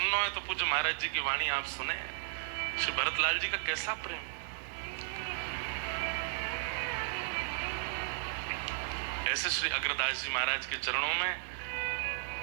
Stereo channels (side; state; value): left; silent; digital silence